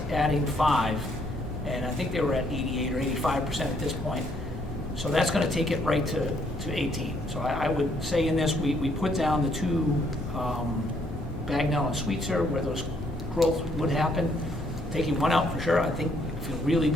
adding 5, and I think they were at 88 or 85% at this point. So that's going to take it right to 18. So I would say in this, we put down the 2 Bagnell and Sweetser, where those growth would happen. Taking 1 out for sure, I think I feel really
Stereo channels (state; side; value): normal; both; correlation 0.69